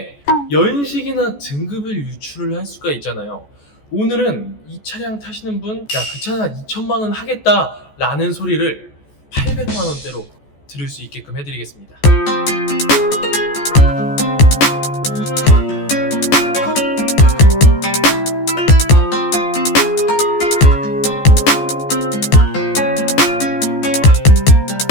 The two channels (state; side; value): late; right; 14 ms